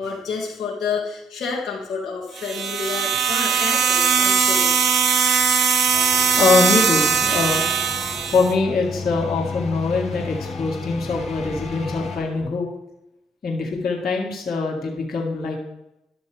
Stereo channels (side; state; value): both; normal; correlation 0.64